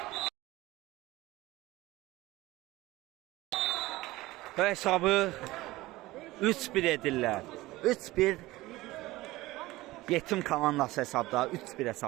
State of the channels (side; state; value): left; quieter; 18.7 dB